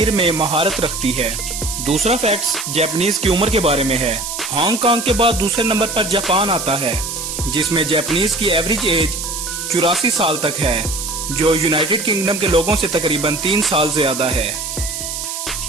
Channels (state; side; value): noise; right; hiss, 5 dB below the sound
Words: में महारत रखती है। दूसरा फैक्ट जापानीज की उम्र के बारे में है। हांगकांग के बाद दूसरे नंबर पर जापान आता है जिसमें जापानीज की एवरेज एज 84 साल तक है, जो यूनाइटेड किंगडम के लोगों से तकरीबन 3 साल ज्यादा है।